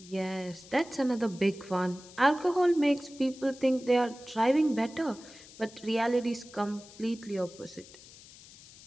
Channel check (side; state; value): left; noise; hiss, 20 dB below the sound